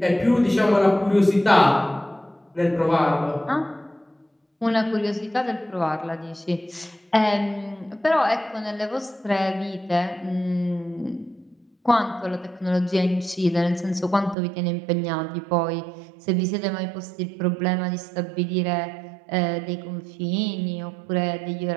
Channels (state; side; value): drops out; left; at 14.4 s